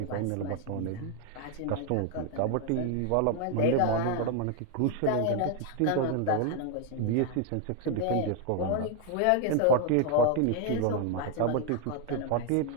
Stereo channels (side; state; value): both; different; correlation 0.01